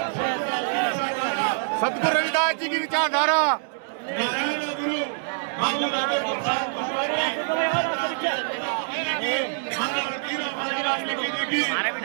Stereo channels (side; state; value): left; silent; digital silence